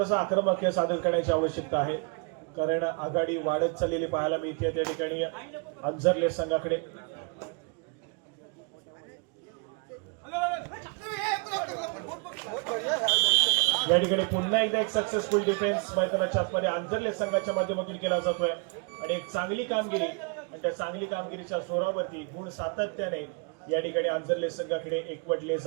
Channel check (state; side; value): quieter; left; 34.1 dB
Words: आक्रमक खेळ सादर करण्याची आवश्यकता आहे कारण आघाडी वाढत चाललेली पाहायला मिळते त्या ठिकाणी अंजरले संघाकडे. या ठिकाणी पुन्हा एकदा एक सक्सेसफुल डिफेन्स मैदानाच्या आतमध्ये आंजर्ले संघाच्या माध्यमातून केला जातोय आणि एक चांगली कामगिरी आणि त्या चांगली कामगिरीच्या जोरावरती गुण सातत्याने या ठिकाणी आंजर्ले संघाकडे एकवटले